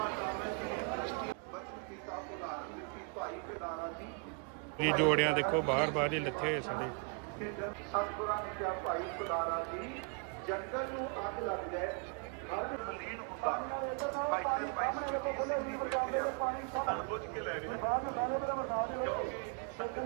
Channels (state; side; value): quieter; left; 37.6 dB